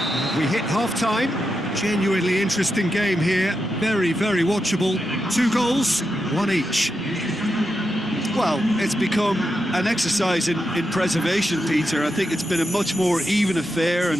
We hit half-time. Genuinely interesting game here. Very watchable. 2 goals, 1 each. Well, it's become an exercise in preservation, Peter. I think it's been a much more even affair,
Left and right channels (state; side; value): normal; both; correlation 0.86